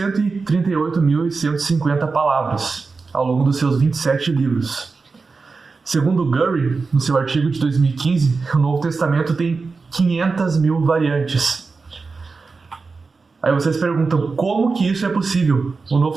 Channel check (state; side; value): quieter; left; 4.3 dB